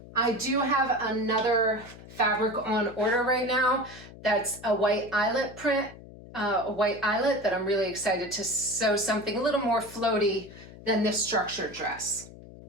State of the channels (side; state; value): left; noise; hum, 18 dB below the sound